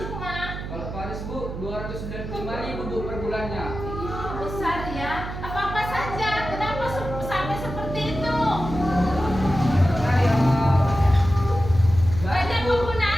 Kalau Paris, Bu, 295.000, Bu, per bulannya. Iya, besar ya. Apa-apa saja? Kenapa sampai seperti itu? Banyak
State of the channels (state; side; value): noise; right; hum, 8 dB below the sound